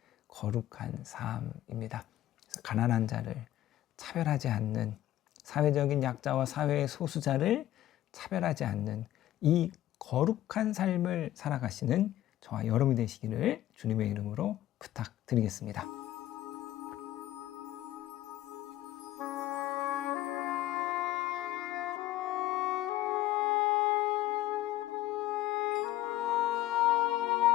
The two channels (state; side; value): quieter; right; 14.0 dB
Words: 거룩한 삶입니다. 그래서 가난한 자를 차별하지 않는, 사회적인 약자와 사회의 소수자를 차별하지 않는 이 거룩한 삶을 살아가시는 저와 여러분이 되시기를 주님의 이름으로 부탁드리겠습니다.